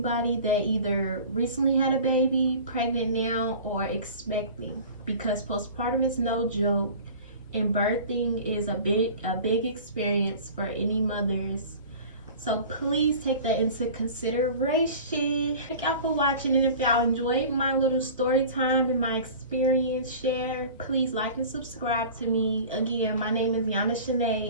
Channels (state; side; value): inverted; both; correlation -0.40